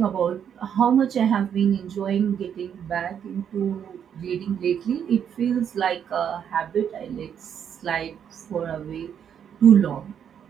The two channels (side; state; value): left; quieter; 8.5 dB